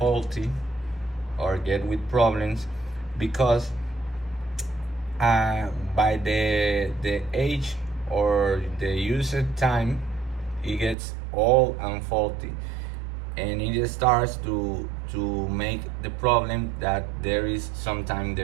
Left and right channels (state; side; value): drops out; left; at 11.0 s